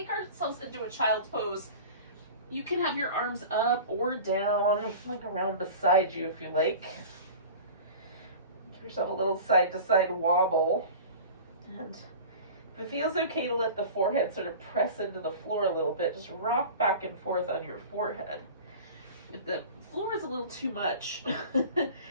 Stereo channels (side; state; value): both; inverted; correlation -0.37